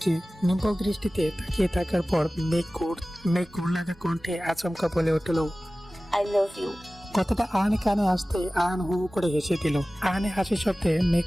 নিম্বল দৃষ্টিতে তাকিয়ে থাকার পর মেঘ ঘুর লাগা কণ্ঠে আচমকা বলে উঠল, আই লাভ ইউ। কথাটা আহানের কানে আসতে আহান হু হু করে হেসে দিল। আহানের হাসির শব্দে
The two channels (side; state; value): both; normal; correlation 0.97